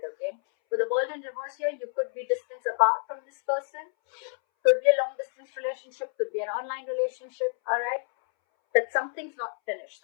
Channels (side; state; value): right; silent; 59 dB below the other